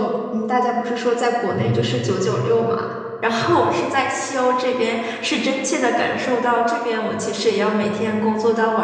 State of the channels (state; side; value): identical; both; correlation 1.00